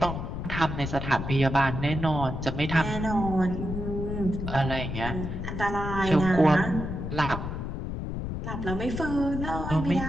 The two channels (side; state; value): left; noise; rumble, 5 dB below the sound